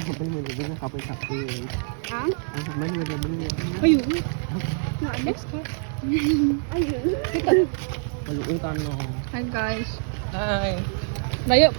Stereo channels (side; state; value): left; silent; 60 dB below the other